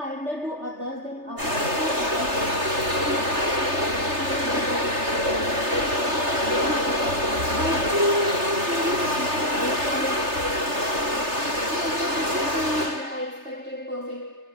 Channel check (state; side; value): late; left; 3.3 ms